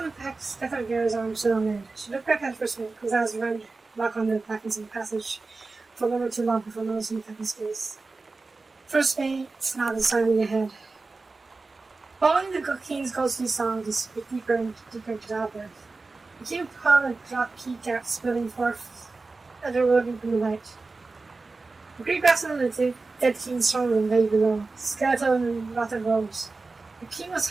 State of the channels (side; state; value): left; quieter; 3.7 dB